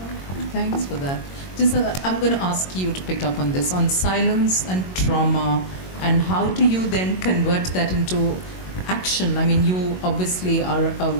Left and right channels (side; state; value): right; late; 22 ms